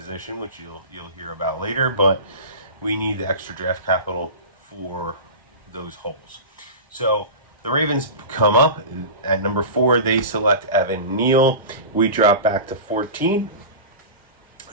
which you'll hear about later. But we need the extra draft capital for those holes. So the Ravens come up at number 4. They select Evan Neal. We drop back to 14.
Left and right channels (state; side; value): inverted; both; correlation -0.30